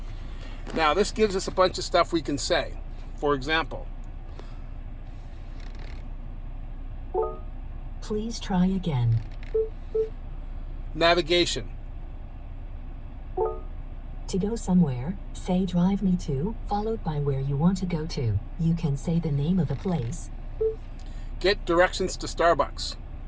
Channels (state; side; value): identical; both; correlation 1.00